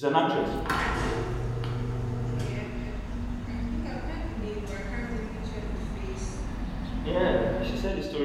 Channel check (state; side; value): identical; both; correlation 1.00